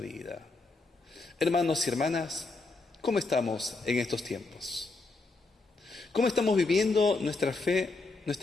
Hermanos y hermanas, ¿cómo estamos en estos tiempos? ¿Cómo estamos viviendo nuestra fe,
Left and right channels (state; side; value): quieter; right; 3.5 dB